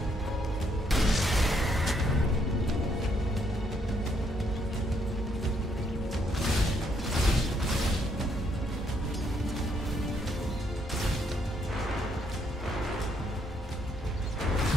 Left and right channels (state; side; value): normal; both; correlation 0.72